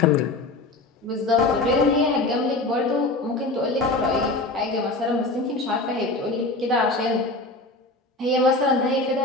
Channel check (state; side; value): quieter; right; 3.1 dB